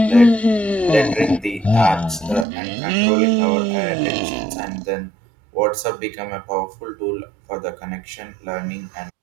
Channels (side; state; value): left; drops out; at 2.5 s